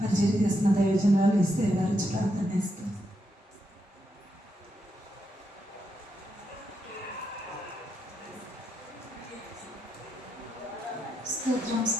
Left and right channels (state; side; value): normal; both; correlation 0.82